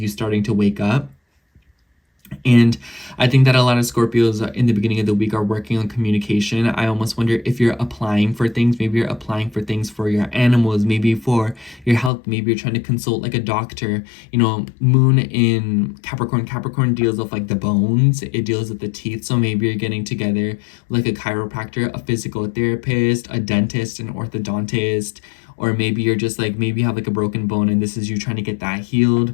starting to wake up. And I think that a lot of Scorpios in the beginning of the week are working on communication. I almost wonder if you're applying for things. Maybe you're applying for things for your animals, maybe for your health. Maybe you're trying to consult like a doctor. Moon in Capricorn. Capricorn deals with like the bones. It deals with the teeth. So maybe you're getting together like a chiropractor, a physical therapist, a dentist, an orthodontist. Or maybe you're just like, maybe you have like a broken bone and this is you trying to get that healed.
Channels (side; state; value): right; drops out; at 12.1 s